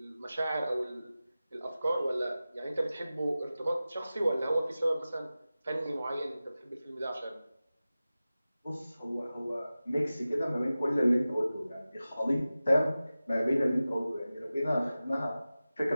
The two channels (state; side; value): inverted; both; correlation -0.95